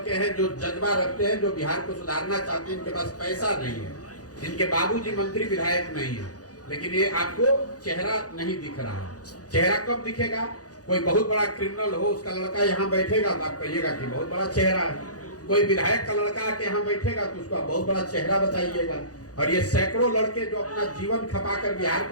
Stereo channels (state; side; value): late; right; 0.67 ms